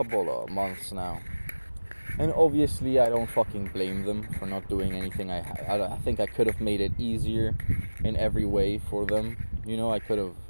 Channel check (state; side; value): inverted; both; correlation -1.00